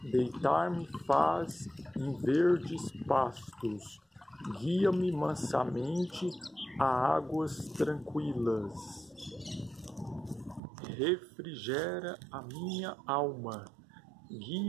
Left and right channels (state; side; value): drops out; left; at 10.6 s